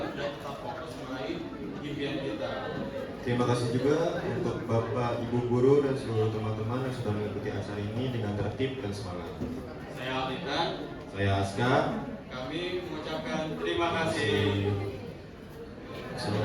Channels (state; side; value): identical; both; correlation 1.00